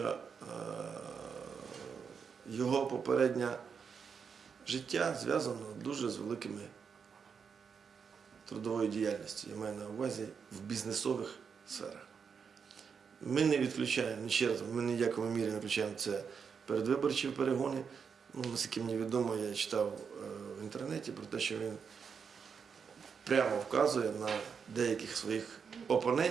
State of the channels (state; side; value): quieter; left; 6.3 dB